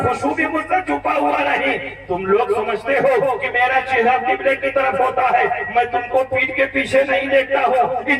خشوع بھی مجھ سے چھپا ہوا نہیں۔ تم لوگ سمجھتے ہو کہ میرا چہرہ قبلے کی طرف ہوتا ہے، میں تم کو پیٹھ کے پیچھے نہیں دیکھتا ہوں۔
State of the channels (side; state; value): both; identical; correlation 1.00